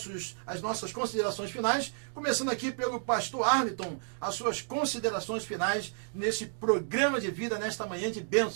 considerações finais, começando aqui pelo pastor Arlington, as suas considerações finais nesse programa de vida, nesta manhã de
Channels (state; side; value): silent; left; digital silence